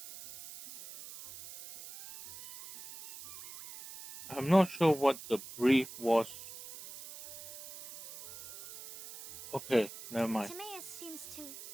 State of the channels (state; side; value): noise; right; hiss, 14 dB below the sound